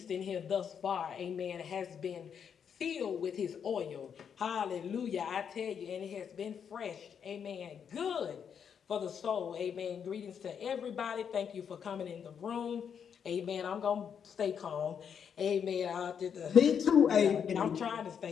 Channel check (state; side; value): quieter; right; 7.5 dB